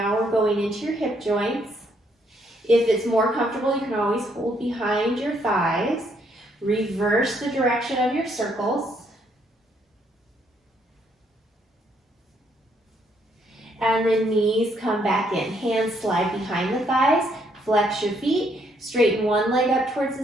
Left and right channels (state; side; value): normal; both; correlation 0.71